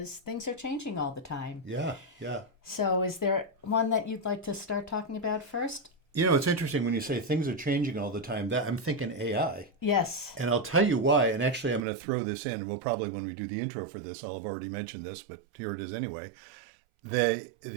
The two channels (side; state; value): left; drops out; at 11.8 s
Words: things are changing all the time. Yeah. So is there one that you'd like to start talking about first? It's interesting when you say things are changing all the time. That I'm thinking AI. Yes. And I'll tell you why. And actually, I'm going to throw this in. We'll probably, when we do the intro for this, I'll have already mentioned this, but here it is anyway.